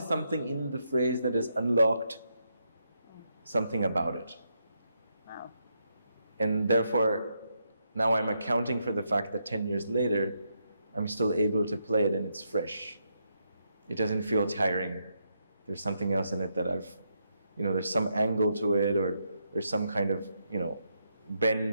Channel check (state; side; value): inverted; both; correlation -0.80